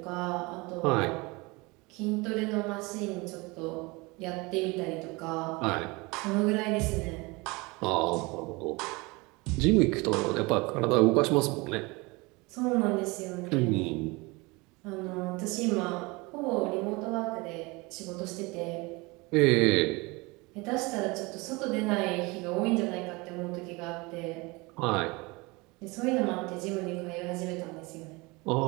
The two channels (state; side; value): quieter; left; 25.2 dB